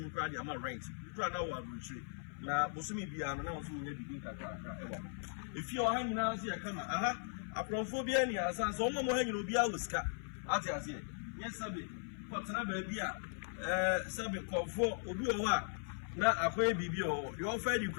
kura dia ma rent kura na wa retreat na bosumi bia no na wo so nya bibi kakra ewa if you are hanging out here kama aprophobia ni asa so mo hanging obi a wuska ati ase yes sabe kwatena ba bia sabe kofo obi o wa na akoye bibi o de ofa di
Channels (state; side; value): silent; right; 52 dB below the other